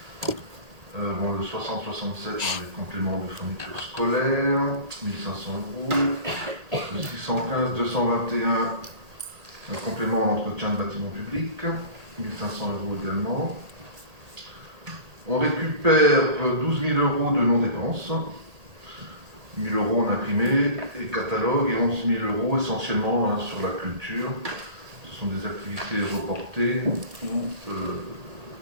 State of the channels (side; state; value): left; late; 1.8 ms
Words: Le 6067, les compléments de fourniture scolaire, 1500 €. Le 615, 221, un complément à l'entretien de bâtiments publics, 1500 € également. On récupère 12 000 € de non-dépenses, 1 000 € en imprimé et catalogue, et 11 000 € essentiellement sur la culture. Ce sont des activités reportées ou